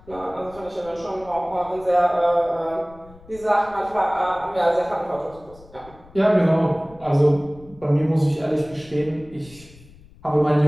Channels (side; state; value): left; noise; rumble, 23 dB below the sound